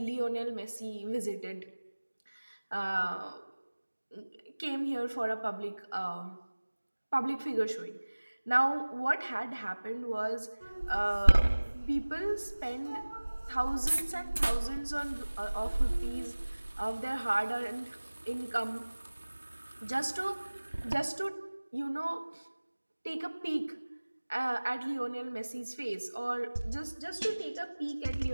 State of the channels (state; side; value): inverted; both; correlation -1.00